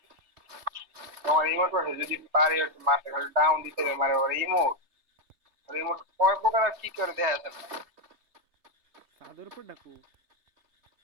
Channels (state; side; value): late; left; 3.3 ms